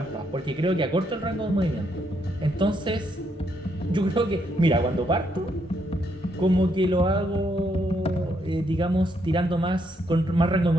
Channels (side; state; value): both; normal; correlation 0.75